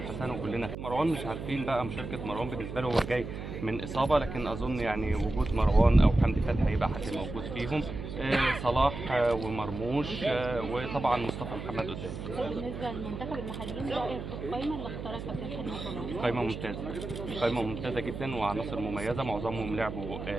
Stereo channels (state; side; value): noise; right; hum, 8 dB below the sound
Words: وكلنا. مروان مش عارفين بقى مشاركه مروان بالنسبه له، هو جاي من اصابه، لكن اظن يعني وجود مروان او حمدي فتحي هيبقى حد موجود فيهم. صلاح ومرموش وطبعا مصطفى محمد قدام. بالنسبه للمنتخب المحليين رايك في القائمه اللي اختارها كابتن حلمي؟ قائمه ممتازه، قائمه ممتازه جدا وعناصر مميزه، معظمهم لعبوا